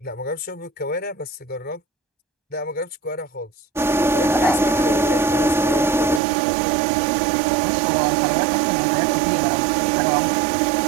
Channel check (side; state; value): left; drops out; at 6.2 s